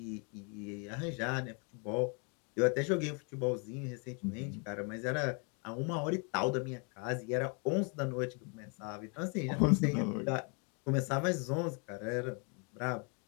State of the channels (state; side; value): quieter; right; 36.1 dB